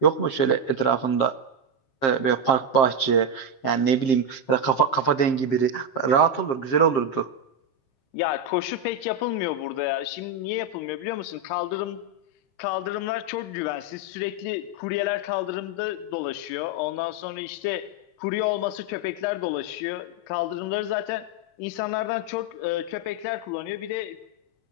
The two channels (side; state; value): right; late; 7.6 ms